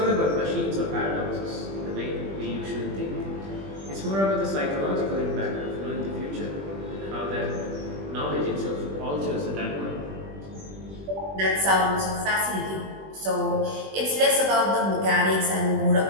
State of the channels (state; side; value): late; left; 20 ms